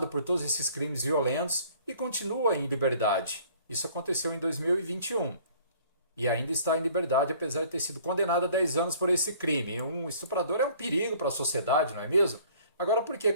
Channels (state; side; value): inverted; both; correlation -0.55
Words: por todos esses crimes violentos e continua em liberdade? Isso aconteceu em 2021 e ainda está em liberdade, apesar de ter sido condenado a 10 anos por esse crime. Um estuprador é um perigo para a sociedade, não é mesmo? Agora, por que